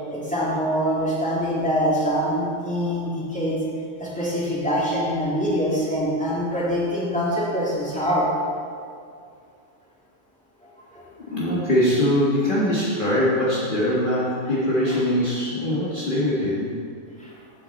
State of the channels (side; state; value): both; normal; correlation 0.21